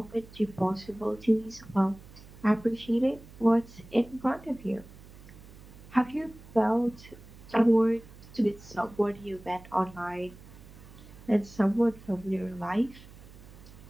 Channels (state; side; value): noise; right; hum, 19 dB below the sound